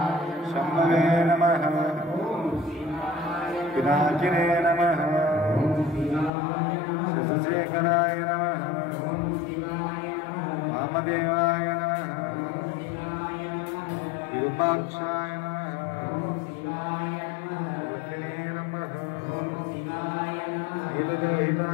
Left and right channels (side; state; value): right; drops out; at 6.3 s